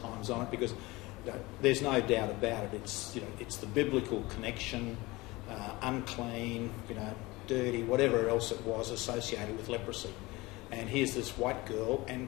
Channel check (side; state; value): right; quieter; 21.7 dB